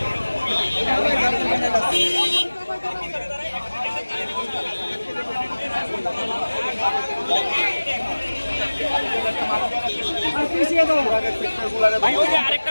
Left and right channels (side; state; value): both; inverted; correlation -1.00